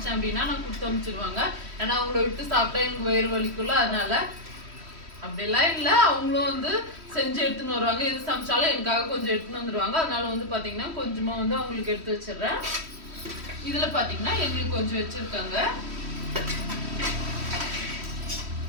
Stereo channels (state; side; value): late; left; 3.1 ms